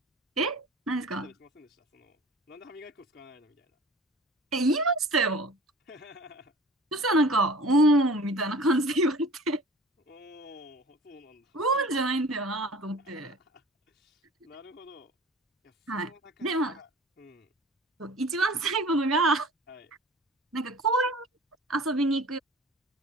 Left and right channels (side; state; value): both; normal; correlation 0.43